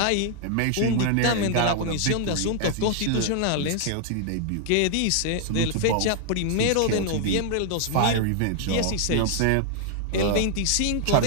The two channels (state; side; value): different; both; correlation 0.00